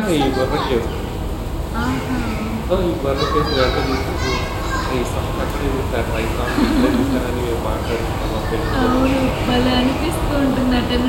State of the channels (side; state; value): both; identical; correlation 1.00